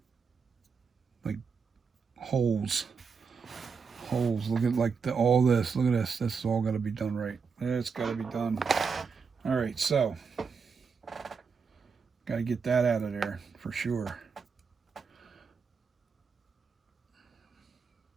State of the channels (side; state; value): left; quieter; 5.5 dB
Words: holes. Look at like all this. Look at this. This is all got to be done right. It's got to be done. All right, so got to get that out of there for sure.